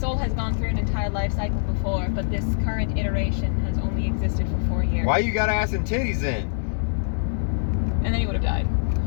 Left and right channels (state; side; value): silent; right; digital silence